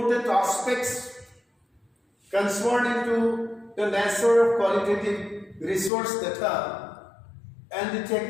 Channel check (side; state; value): right; drops out; at 5.9 s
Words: aspects concerning to the nature of qualitative resource data and the